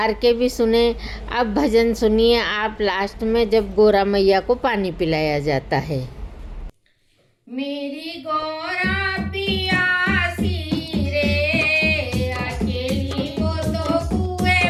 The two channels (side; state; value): both; identical; correlation 1.00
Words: के भी सुने। अब भजन सुनिए आप लास्ट में जब गौरा मैया को पानी पिलाया जाता है। मेरी गौरा पियासी रे अकेली वो तो कुएं